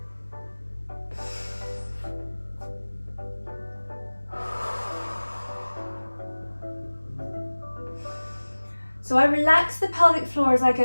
So I relax the pelvic floor as I go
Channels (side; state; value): both; inverted; correlation -1.00